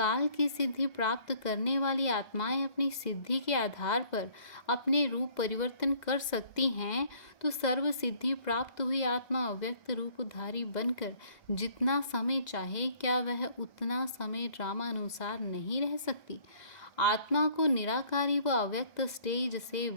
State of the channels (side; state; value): right; late; 2.0 ms